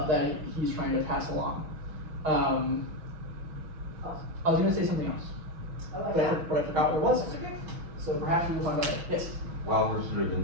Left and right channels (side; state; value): left; late; 6.3 ms